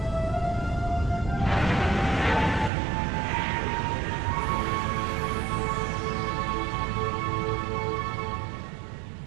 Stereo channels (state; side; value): drops out; left; at 2.7 s